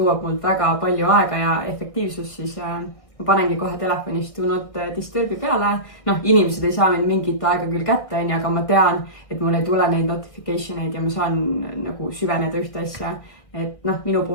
mult väga palju aega ja efektiivsust, siis ma panengi kohe telefonist do not disturbi peale. Noh, inimesed ei saa mind mingit aega küll kätte, aga ma tean, et mul ei tule neid notificationeid ja ma saan nagu süveneda ühte asja. Et noh, minu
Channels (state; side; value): late; right; 1.6 ms